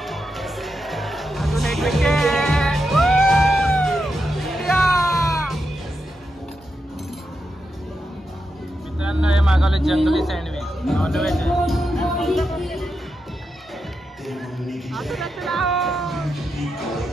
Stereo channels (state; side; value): normal; both; correlation 0.86